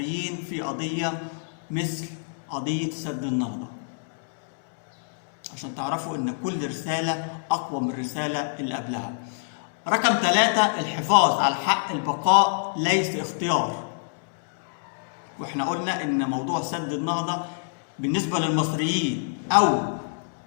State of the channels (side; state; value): right; silent; digital silence